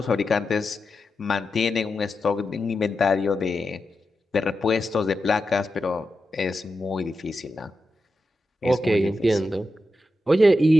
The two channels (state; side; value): normal; both; correlation 0.89